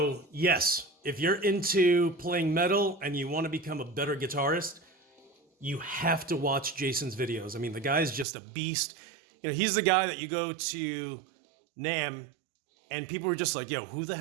yes, if you're into playing metal and you want to become a better guitarist, you have to watch Jason's videos. I mean, the guy's just a beast. You know, he's the guy that you go to NAMM and people are just like, yo, who the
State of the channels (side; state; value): left; drops out; at 8.2 s